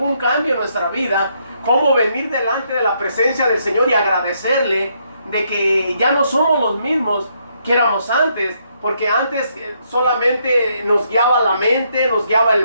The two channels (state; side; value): inverted; both; correlation -0.74